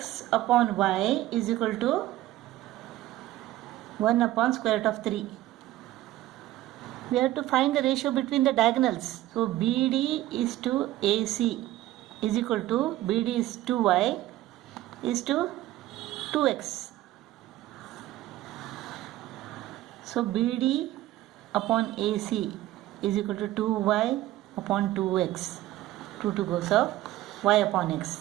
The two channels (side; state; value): left; quieter; 15.4 dB